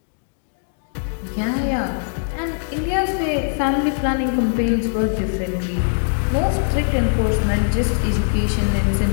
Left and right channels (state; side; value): silent; right; digital silence